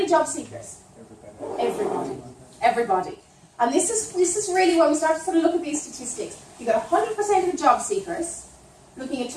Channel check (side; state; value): both; identical; correlation 1.00